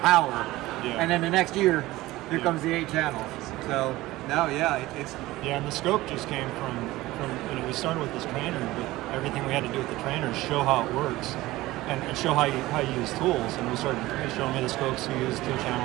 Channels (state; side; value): quieter; left; 18.0 dB